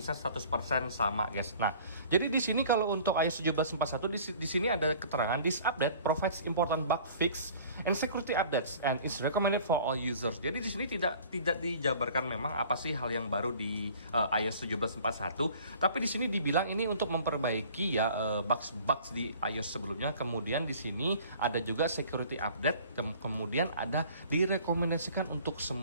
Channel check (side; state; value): both; inverted; correlation -0.49